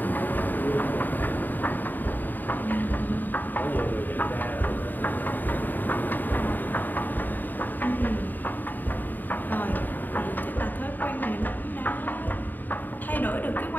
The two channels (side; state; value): right; late; 0.088 ms